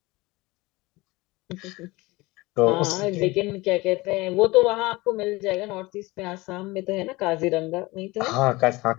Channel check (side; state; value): right; quieter; 21.9 dB